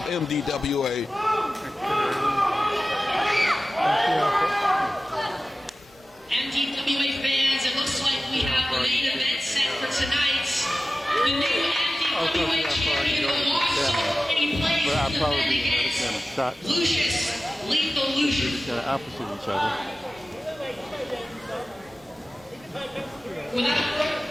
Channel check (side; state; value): both; normal; correlation 0.95